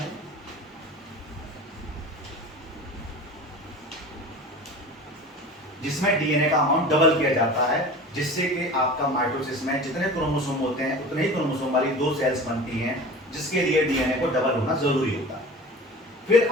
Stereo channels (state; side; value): normal; both; correlation 0.37